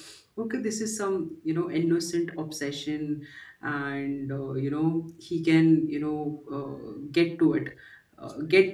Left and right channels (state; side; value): identical; both; correlation 1.00